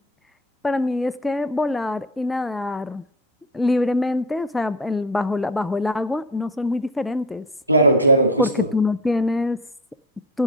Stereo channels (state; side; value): normal; both; correlation 0.26